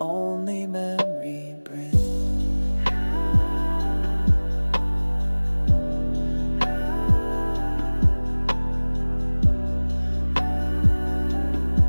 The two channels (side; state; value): both; inverted; correlation -1.00